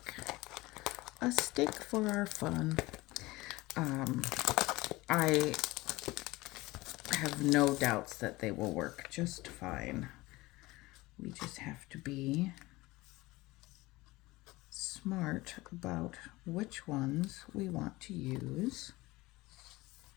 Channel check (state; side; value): quieter; right; 20.5 dB